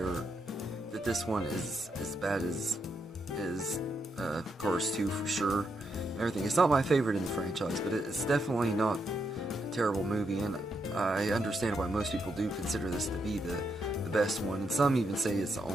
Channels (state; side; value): normal; both; correlation 0.80